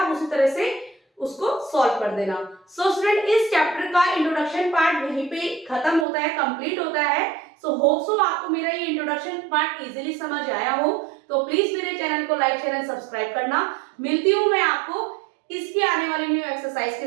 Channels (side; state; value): left; drops out; at 6.1 s